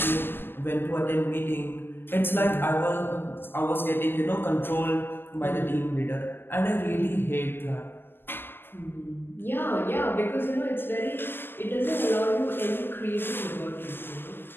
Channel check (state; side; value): late; right; 0.10 ms